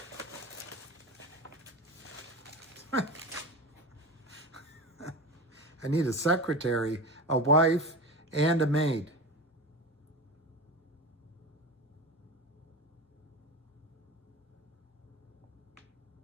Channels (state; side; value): normal; both; correlation 0.26